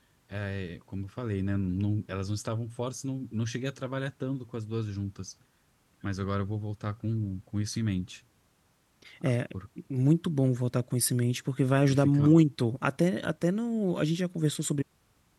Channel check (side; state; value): both; identical; correlation 1.00